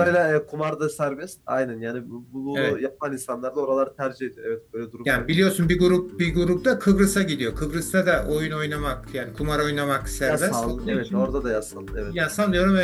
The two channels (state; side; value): identical; both; correlation 1.00